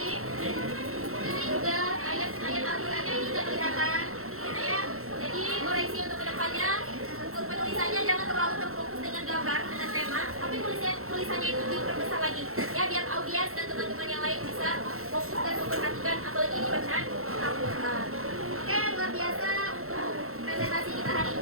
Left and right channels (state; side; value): late; left; 0.63 ms